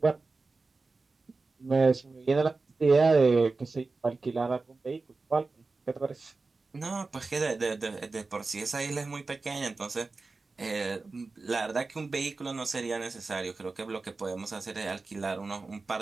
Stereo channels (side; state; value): left; quieter; 3.8 dB